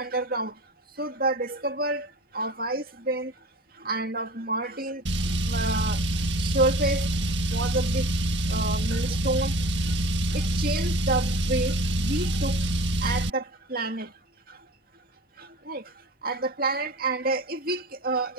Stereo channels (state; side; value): normal; both; correlation 0.38